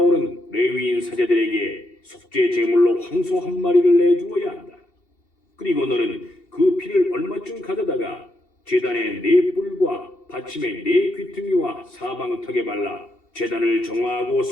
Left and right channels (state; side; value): late; right; 2.7 ms